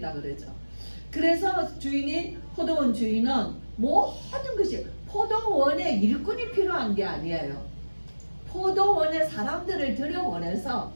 그러죠. 그래서 포도원 주인은 모든 것이 포도원에 일꾼이 필요한 게 아니에요. 포도원에 사람들을 들여보내서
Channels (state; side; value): inverted; both; correlation -1.00